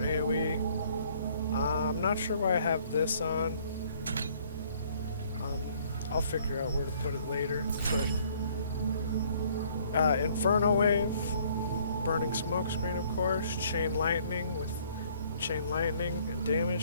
I'm not sure why I have this on. I'll figure out where to put it later. But Inferno Wave, Burning Smokescreen, of course. Chain Lightning with Chain Lightning and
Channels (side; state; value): both; inverted; correlation -0.61